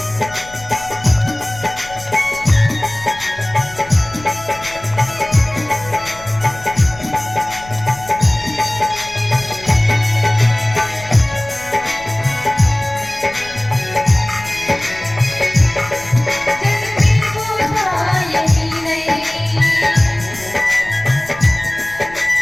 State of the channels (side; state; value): left; noise; rumble, 19 dB below the sound